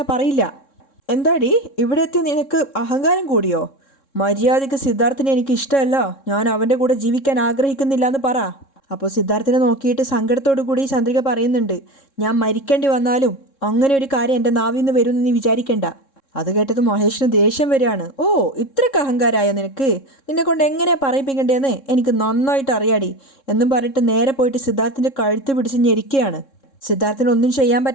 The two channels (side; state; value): right; late; 3.7 ms